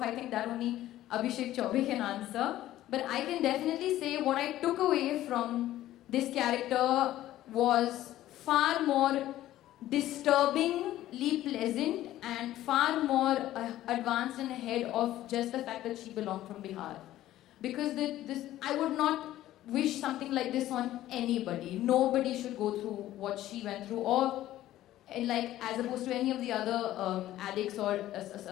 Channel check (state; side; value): quieter; right; 14.1 dB